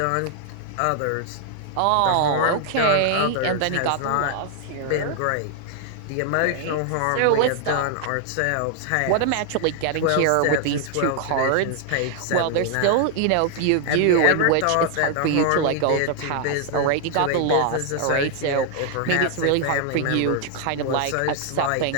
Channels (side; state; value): both; different; correlation 0.00